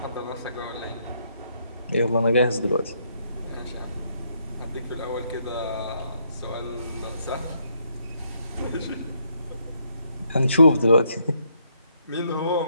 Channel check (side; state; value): both; inverted; correlation -0.74